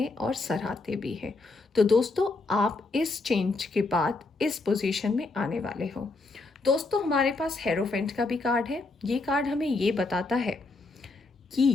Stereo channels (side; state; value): right; quieter; 3.5 dB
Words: और सराहते भी हैं। तो दोस्तों, आप इस चेंज के बाद इस पोजीशन में आने वाले हो। दोस्तों, हमारे पास हेरोफेंट का भी कार्ड है। ये कार्ड हमें ये बताता है